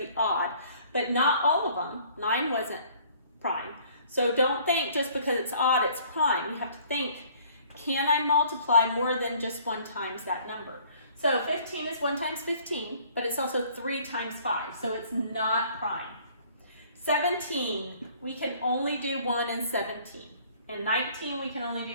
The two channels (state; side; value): inverted; both; correlation -0.56